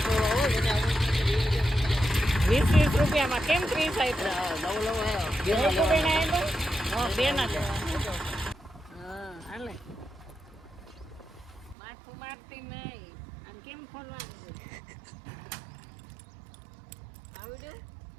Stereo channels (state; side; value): drops out; left; at 11.8 s